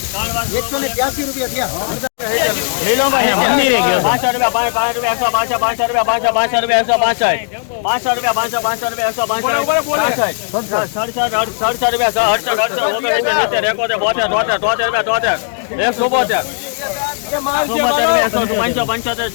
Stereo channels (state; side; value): silent; right; digital silence